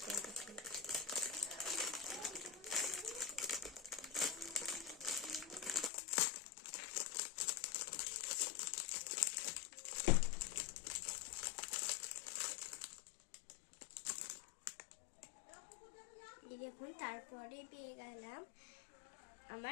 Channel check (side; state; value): right; drops out; at 5.9 s